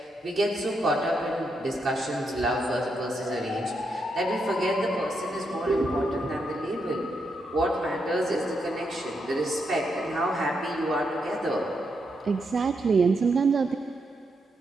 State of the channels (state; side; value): normal; both; correlation 0.81